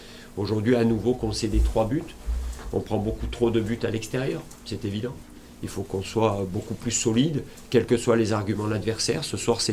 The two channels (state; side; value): identical; both; correlation 1.00